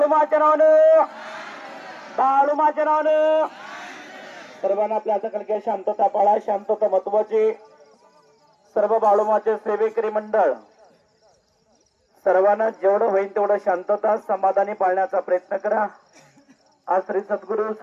माच्या नावानं बाळू माच्या नावानं सर्वांना आपल्या हाताखाली शांतता पाळा शांतता महत्वाची सर्व बाळूमाचे सेवेकरी मंडळ सर्वांना जेवढं होईल तेवढं शांतता समाधानी पाळण्याचा प्रयत्न करा आज श्री सद्गुरु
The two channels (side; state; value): both; identical; correlation 1.00